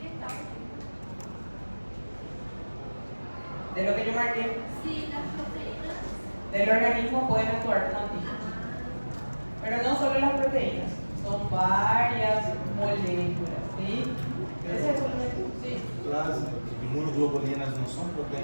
De lo que yo marqué. Sí, las proteínas Del organismo pueden actuar como antígenos. Pero no solo las proteínas, son varias moléculas, ¿sí? ¿Ese es el sí? Las inmunoglobulinas no son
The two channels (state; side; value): inverted; both; correlation -1.00